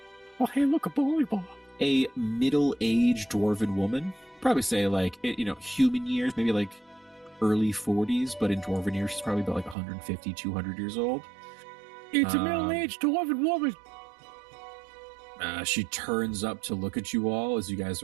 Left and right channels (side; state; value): left; drops out; at 9.8 s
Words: Oh, hey, look, a bowling ball. a middle-aged dwarven woman. Probably say like, human years, maybe like early 40s, but in dwarven years, she's probably about like 150, 200 years old. It's a middle-aged dwarven woman. She turns up to look at you all as you guys